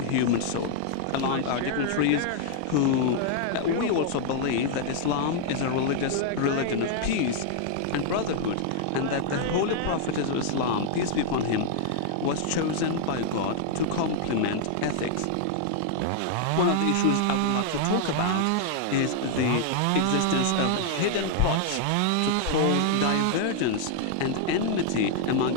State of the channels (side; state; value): both; different; correlation -0.01